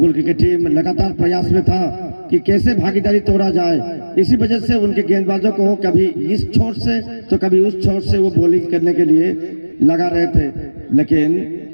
क्रिकेट टीम लगातार प्रयास में था कि कैसे भागीदारी तोड़ा जाए। इसी वजह से उनके गेंदबाजों को कभी इस छोर से तो कभी उस छोर से वो बॉलिंग करने के लिए लगा रहे थे, लेकिन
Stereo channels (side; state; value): both; inverted; correlation -1.00